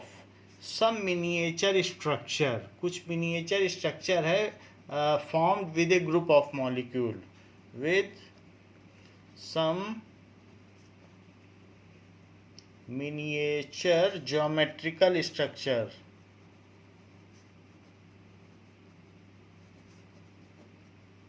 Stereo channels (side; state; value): both; identical; correlation 1.00